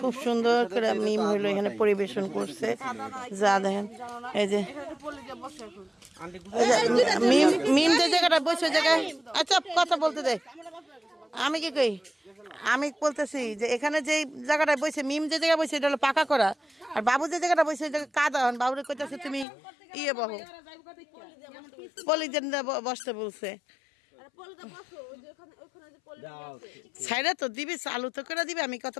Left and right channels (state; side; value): drops out; right; at 19.5 s